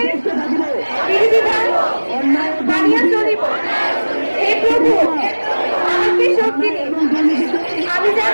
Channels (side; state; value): both; inverted; correlation -1.00